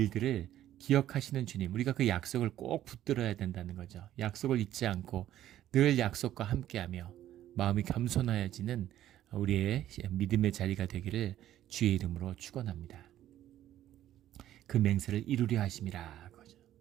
기억하시는 주님, 우리가 그 약속을 꼭 붙들어야 된다는 거죠. 약속을 잊지 않고 늘 약속과 함께하며 마음이 겸손하여지는 우리의 믿음의 자리가 되기를 주의 이름으로 축원합니다. 그 맹세를 이루려 하심이라. 그죠.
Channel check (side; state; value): left; quieter; 12.5 dB